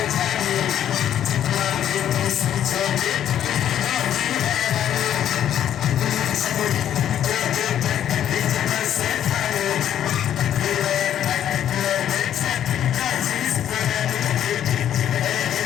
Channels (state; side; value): quieter; right; 10.5 dB